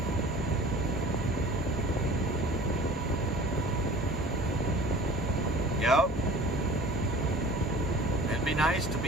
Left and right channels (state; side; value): normal; both; correlation 0.44